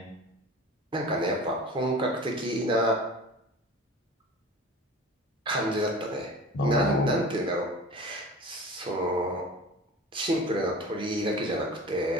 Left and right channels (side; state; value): both; normal; correlation 0.38